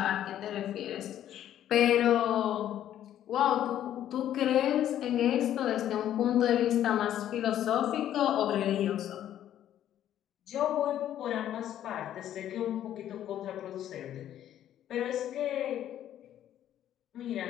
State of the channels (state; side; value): quieter; right; 11.3 dB